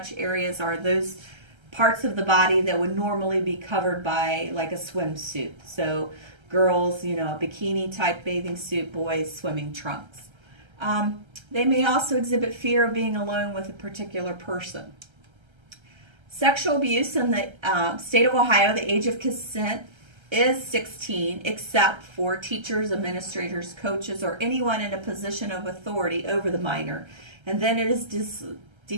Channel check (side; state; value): left; late; 1.3 ms